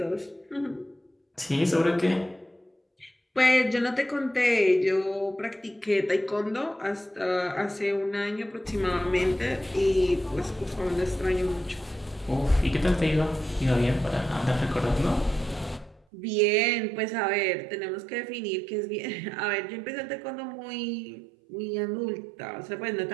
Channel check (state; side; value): drops out; left; at 16.1 s